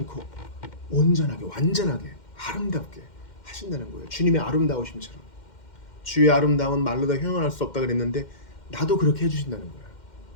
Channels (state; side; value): late; right; 2.1 ms